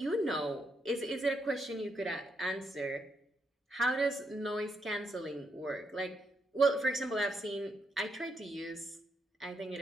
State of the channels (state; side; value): normal; both; correlation 0.79